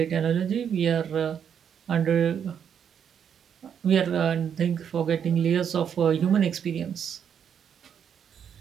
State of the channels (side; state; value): left; quieter; 8.1 dB